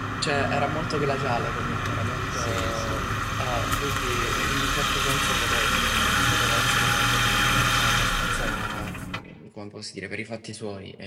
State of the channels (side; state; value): both; identical; correlation 1.00